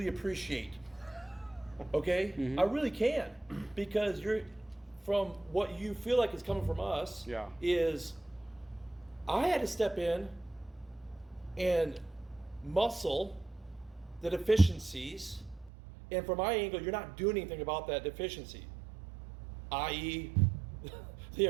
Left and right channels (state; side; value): drops out; left; at 15.7 s